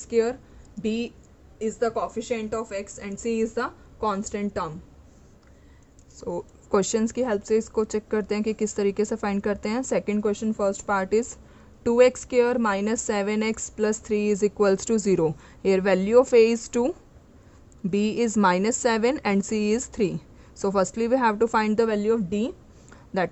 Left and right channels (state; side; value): identical; both; correlation 1.00